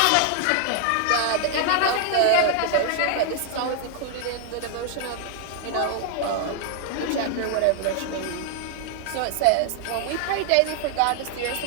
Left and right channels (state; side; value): different; both; correlation 0.00